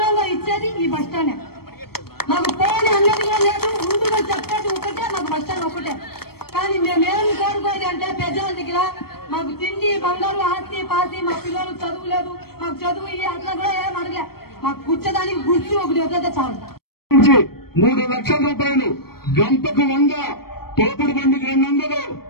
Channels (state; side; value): late; right; 0.95 ms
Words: ఇచ్చేది ఈ బస్ స్టాండ్. మాకు పోని అన్నది కూడా లేదు, ముందుగా చెప్పేది ఒకటే, మాకు బస్ స్టాండ్ ఒకటే. కానీ మేమేమి కోరుకోది అంటే పెద్దల దగ్గర మాకు తిండి బంగారు ఆస్తి పాస్తి, మా పిల్లలు చదువు లేదు, మాకు చదువు అట్లా కూడా ఏం అడగలే. మాకు కూర్చోడానికి గుర్తు ఒకటి వద్ద చాలు. 3 లక్షల రూపాయలు, గంటకు 100, తోపుడు బండికి 200,